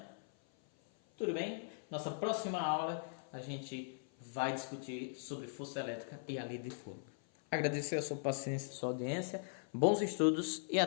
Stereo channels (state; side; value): silent; right; 51 dB below the other